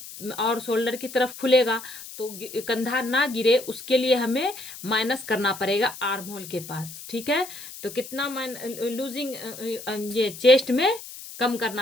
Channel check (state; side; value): noise; left; hiss, 13 dB below the sound